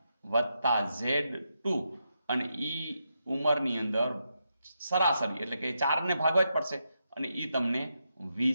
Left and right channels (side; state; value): both; inverted; correlation -0.84